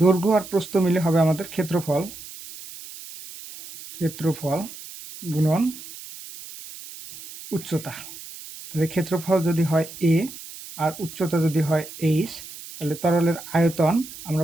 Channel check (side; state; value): right; noise; hiss, 14 dB below the sound